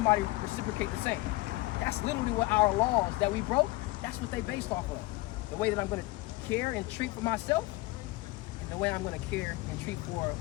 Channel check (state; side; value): quieter; right; 20.6 dB